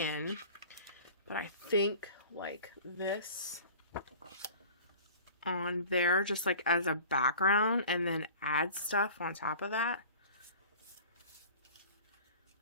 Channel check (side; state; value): both; inverted; correlation -0.42